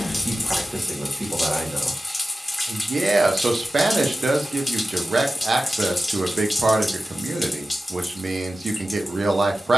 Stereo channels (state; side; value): normal; both; correlation 0.94